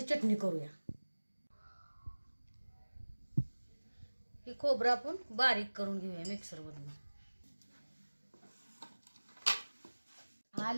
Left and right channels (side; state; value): both; inverted; correlation -1.00